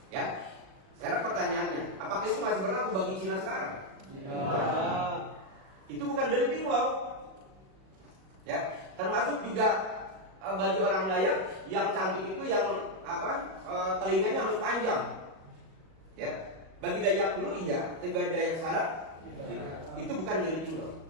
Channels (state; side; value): late; left; 37 ms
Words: Ya, sekarang pertanyaannya, apakah itu masih berlaku bagi Cina sekarang? Ya. Itu bukan developing law. Ya, termasuk juga bagi orang Dayak yang cantik itu yang telinganya harus panjang. Ya, bagi Dayak dulu iya, tapi bagi Dayak sekarang itu bukan developing law.